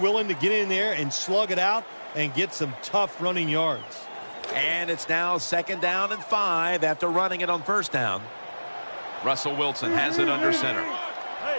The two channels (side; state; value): both; inverted; correlation -1.00